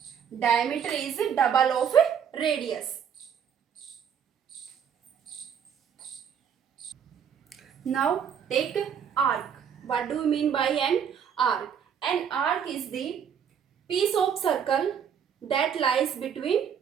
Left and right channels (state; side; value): quieter; left; 7.9 dB